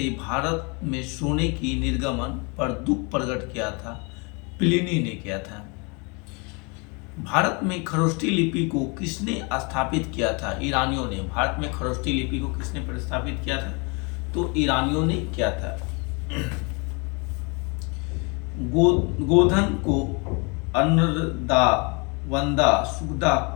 भारत में सोने की निर्गमन पर दुख प्रकट किया था? प्लिनी ने किया था। भारत में खरोष्ठी लिपि को किसने स्थापित किया था? ईरानियों ने। भारत में खरोष्ठी लिपि को किसने प्रस्तावित किया था? तो ईरानियों ने किया था। गोधन को अन्नदा वंदा सुखदा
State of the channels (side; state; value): right; quieter; 31.4 dB